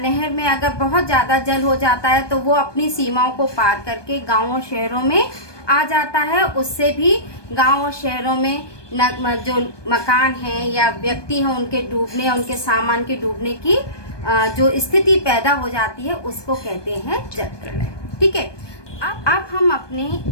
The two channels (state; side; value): late; right; 1.2 ms